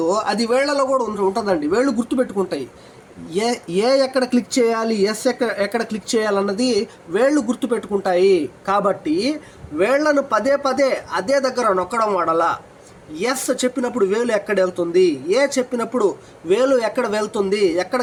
అది వేళ్లలో కూడా ఉంటుందండి. వేళ్ళు గుర్తుపెట్టుకుంటాయి. ఎక్కడ క్లిక్ చేయాలి, ఎక్కడ క్లిక్ చేయాలన్నది వేళ్ళు గుర్తుపెట్టుకుంటాయి. కాబట్టి వేళ్లను పదే అదే దగ్గర నొక్కడం వాడలా. ఎస్ చెప్పినప్పుడు వేలు ఎక్కడ వెళ్తుంది, ఏ చెప్పినప్పుడు వేలు ఎక్కడ వెళ్తుంది, ఎక్కడ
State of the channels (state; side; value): identical; both; correlation 1.00